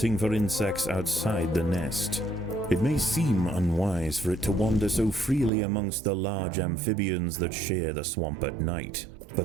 for insects outside the nest. It may seem unwise for it to wander so freely amongst the large amphibians that share the swamp at night,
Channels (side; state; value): left; drops out; at 5.5 s